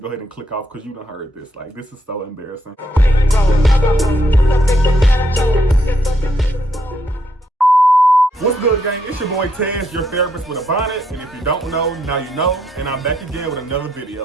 ahead and click off because you done heard this. Like, this is so embarrassing. What's good, gang? It's your boy Tez, your therapist with a bonnet. And if you don't know, now you know. And I'm back again with another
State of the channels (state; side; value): normal; both; correlation 0.76